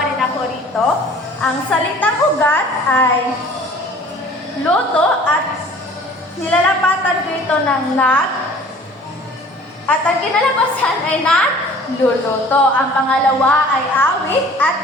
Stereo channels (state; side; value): normal; both; correlation 0.49